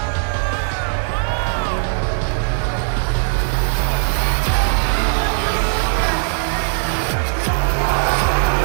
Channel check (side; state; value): left; silent; digital silence